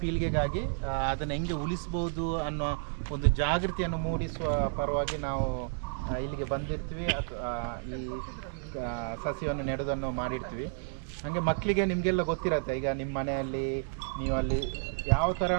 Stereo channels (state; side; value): silent; left; digital silence